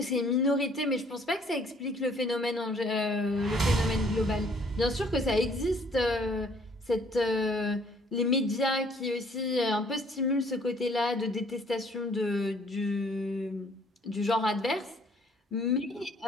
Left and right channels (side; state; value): both; normal; correlation 0.61